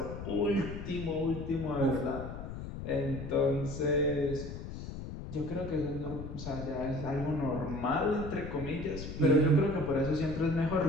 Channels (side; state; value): left; noise; rumble, 8 dB below the sound